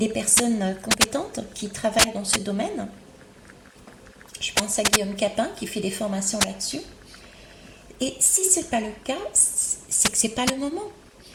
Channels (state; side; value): identical; both; correlation 1.00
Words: personnes compétentes qui travaillent dans ce domaine. Je pense à Guillaume Capin qui fait des formations là-dessus. Et si ce n'est pas le cas, c'est que ce n'est pas le moment.